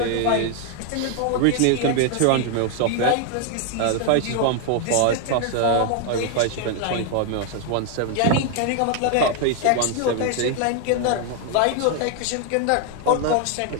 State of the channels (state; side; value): different; both; correlation 0.01